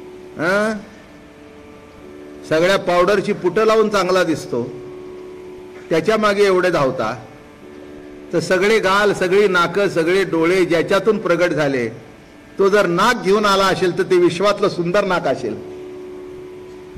सगळ्या पावडरची पुटं लावून चांगला दिसतो, त्याच्या मागे एवढे धावता, तर सगळे गाल, सगळी नाकं, सगळे डोळे ज्याच्यातून प्रगट झाले, तो जर नाक घेऊन आला असेल तर ते विश्वातलं सुंदर नाक असेल,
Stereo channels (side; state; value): both; identical; correlation 1.00